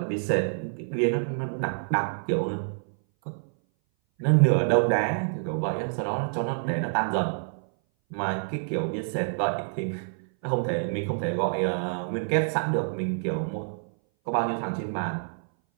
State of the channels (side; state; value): left; silent; 58 dB below the other